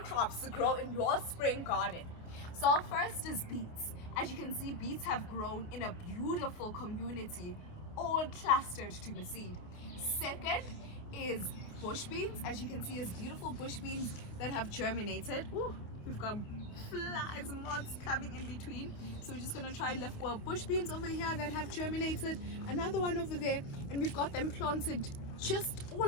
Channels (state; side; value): late; right; 28 ms